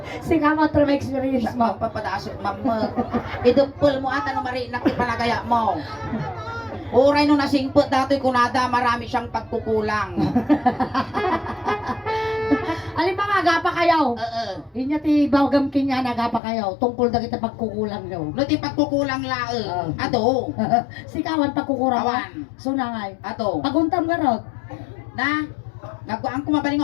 Si Kama true experience mo. Magpapadasok mamma. Idupol mo ata no mari nakipalagaya mo. Uray no nasingpot datoy kunada marami siyang pagkukulang. Alin ba nga, agapa kayo? Inya ti bawgam kinya nagapa kayo. Tungkol na kita pagkukulang nyo. No ti pagkukulang lae. Ato. Si Kawan pagkukulang Kawan. Sunangay. Ato. Paguntam ka rod. Na nagkuang kumabaling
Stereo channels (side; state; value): right; drops out; at 16.4 s